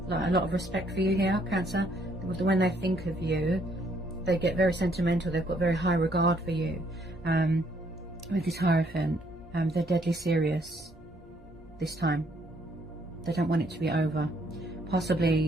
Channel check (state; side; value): normal; both; correlation 0.68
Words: of respect for you here, Cancer. When they think of you, they get very sentimental. They've got very high regard for you. With this Hierophant, they're deadly serious this time. They don't want it to be over.